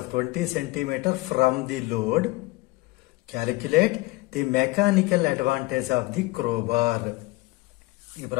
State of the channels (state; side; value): quieter; right; 21.8 dB